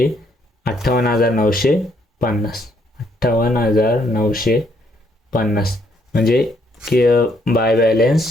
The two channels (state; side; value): normal; both; correlation 0.70